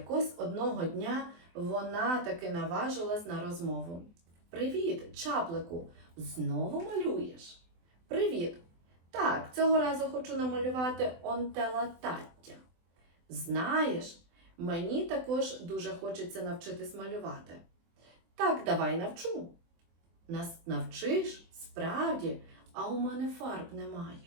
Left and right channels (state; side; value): late; left; 24 ms